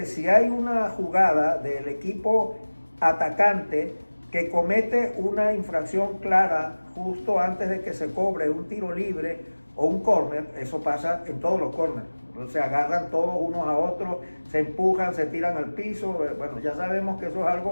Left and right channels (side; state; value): both; inverted; correlation -1.00